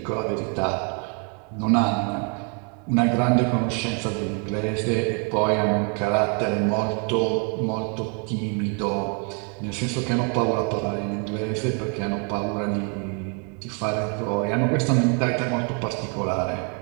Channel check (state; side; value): quieter; left; 38.9 dB